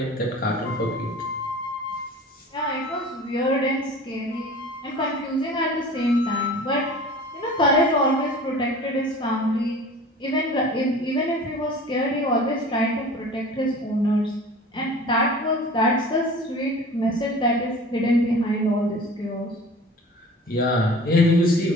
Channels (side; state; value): both; normal; correlation 0.41